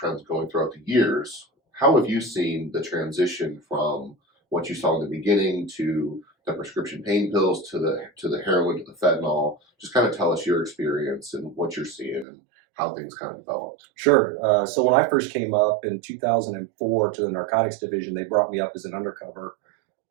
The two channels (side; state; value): left; drops out; at 12.2 s